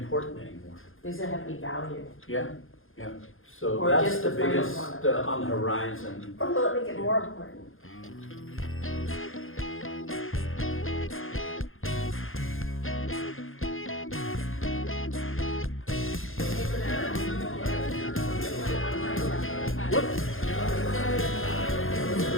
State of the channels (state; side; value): late; right; 0.60 ms